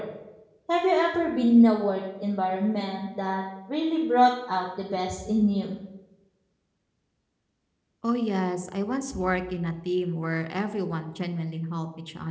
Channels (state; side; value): identical; both; correlation 1.00